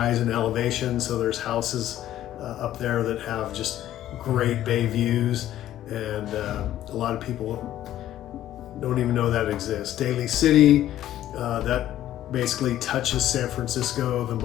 in elevation. So there's houses up there that have just great bay views, and a lot of people don't even know that exists. Daly City, that basically touches San Francisco the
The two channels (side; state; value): right; quieter; 12.8 dB